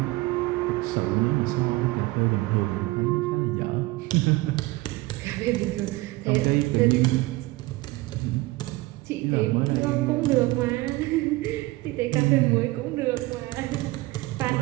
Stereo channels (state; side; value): quieter; left; 20.6 dB